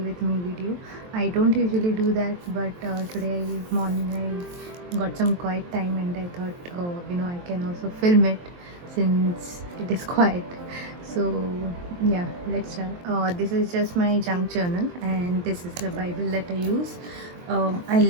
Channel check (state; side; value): late; left; 23 ms